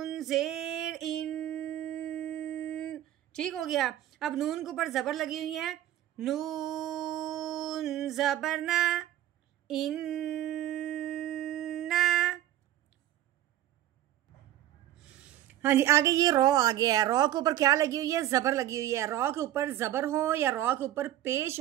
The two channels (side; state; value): left; quieter; 12.9 dB